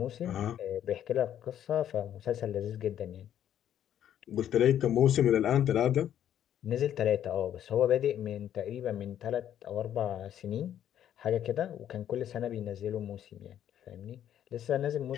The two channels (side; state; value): right; quieter; 10.5 dB